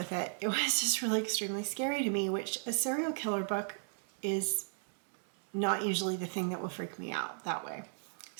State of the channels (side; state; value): left; silent; 54 dB below the other